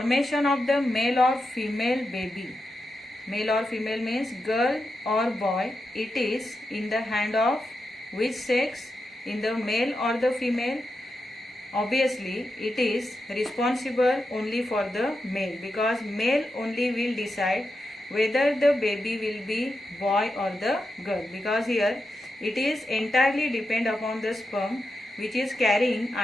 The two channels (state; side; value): normal; both; correlation 0.88